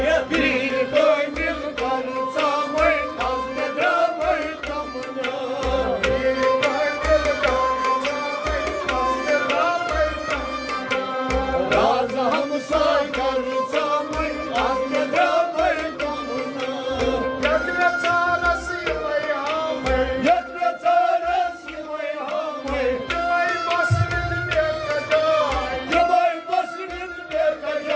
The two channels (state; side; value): identical; both; correlation 1.00